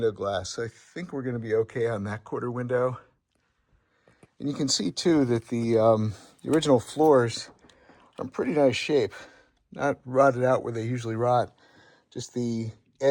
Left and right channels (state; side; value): identical; both; correlation 1.00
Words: glass. I think we're going to be okay on that quarter window. And you can see too that the original floors are in pretty nice shape. Not rotted out where they usually rot, just the